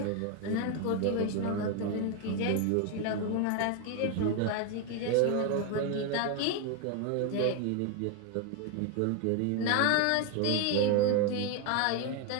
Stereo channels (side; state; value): both; different; correlation 0.01